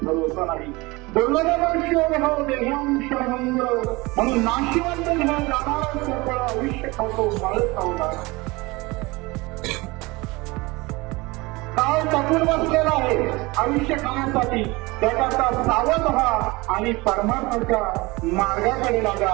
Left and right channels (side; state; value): left; quieter; 23.3 dB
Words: भरोसा नाही. दुर्लभ मनुष्य देहो देहिरांश भंग. म्हणून नाशिवंत निघत जाणारं सगळं आयुष्य पाहतो काळच सावध. काळ टपून बसलेला आहे आयुष्य खाण्यासाठी. त्याकरता सावध व्हा आणि परमार्थाच्या मार्गाकडे लागा.